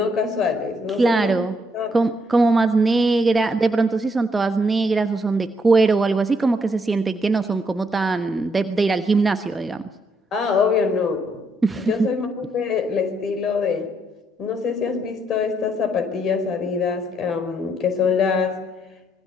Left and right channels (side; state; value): both; normal; correlation 0.74